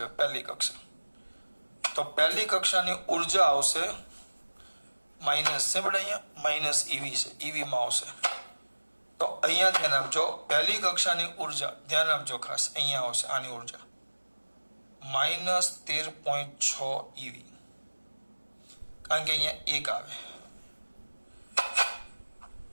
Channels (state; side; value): inverted; both; correlation -1.00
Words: પહેલી કક્ષા તો પહેલી કક્ષાની ઉર્જા આવશે માઇનસ છે, પણ અહીંયા માઇનસ EV છે, EV માં આવશે. તો અહીંયા ધ્યાન આપજો, પહેલી કક્ષાની ઉર્જા ધ્યાન આપજો ખાસ, અહીંયા આવશે આની ઉર્જા -13.6 EV, કારણ કે અહીંયા 1 આવે.